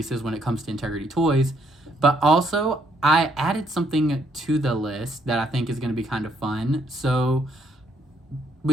when it comes to Integrity Toys. But also, I added something to the list that I think is going to be kind of fun. So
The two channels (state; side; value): normal; both; correlation 0.71